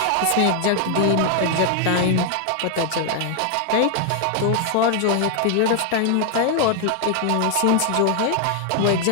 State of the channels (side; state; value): both; different; correlation 0.00